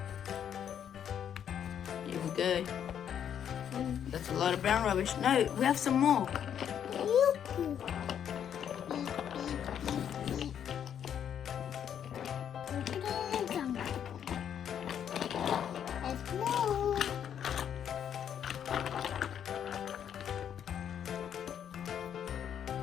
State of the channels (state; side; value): quieter; right; 9.0 dB